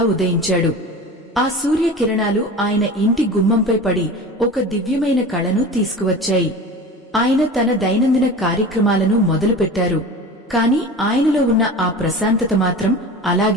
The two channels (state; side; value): normal; both; correlation 0.34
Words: ఉదయించాడు. ఆ సూర్యకిరణాలు ఆయన ఇంటి గుమ్మంపై పడి ఒక దివ్యమైన కళను తీసుకువచ్చాయి. ఆయన తన దైనందిన కార్యక్రమాలను మొదలుపెట్టారు. కాని ఆయనలో ఉన్న ఆ ప్రశాంతత మాత్రం